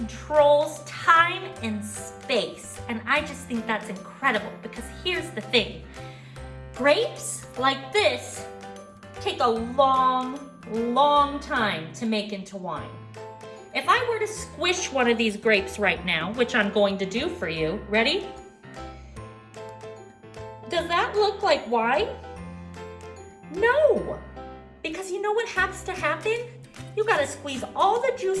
time and space. And I just think that's incredible because here's the thing. Grapes like this take a long time to make into wine. If I were to squish one of these grapes right now, which I'm going to do for you, ready? Does that look like wine? No, because you know what has to happen? You gotta squeeze all the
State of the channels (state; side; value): identical; both; correlation 1.00